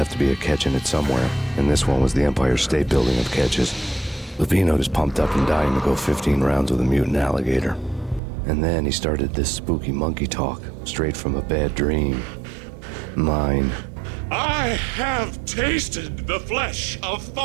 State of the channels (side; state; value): left; drops out; at 8.2 s